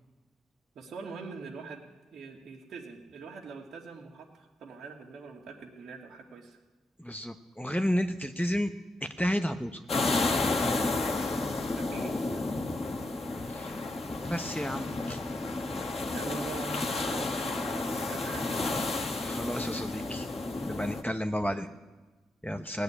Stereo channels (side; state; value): both; normal; correlation 0.84